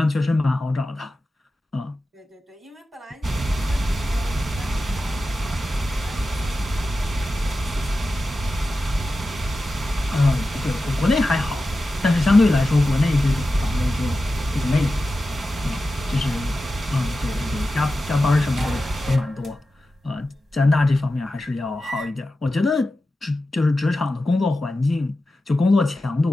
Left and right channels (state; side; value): normal; both; correlation 0.93